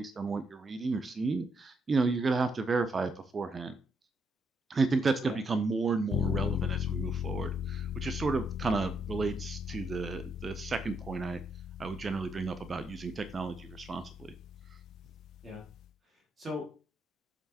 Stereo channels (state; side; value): normal; both; correlation 0.76